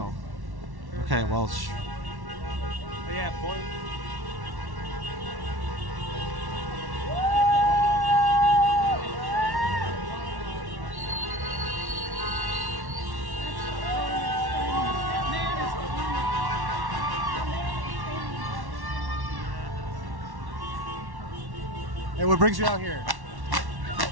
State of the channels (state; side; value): late; left; 1.1 ms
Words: Okay, well... But yeah, boy. Hey, what brings you out here?